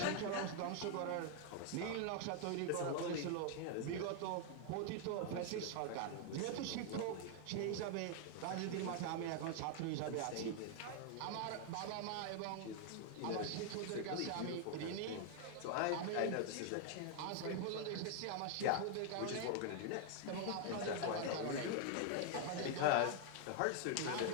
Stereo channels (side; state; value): both; different; correlation 0.00